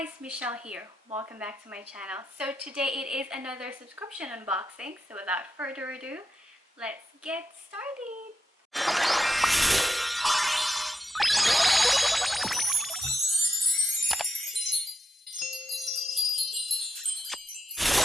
Michelle here. Welcome back to my channel. So today it is another subscription unboxing. So without further ado, let's get started.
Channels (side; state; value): both; normal; correlation 0.84